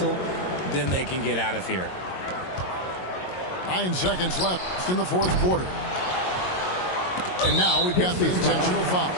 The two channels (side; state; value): right; late; 22 ms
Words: Then they can get out of here. 9 seconds left in the fourth quarter. And now we've got the intentional foul.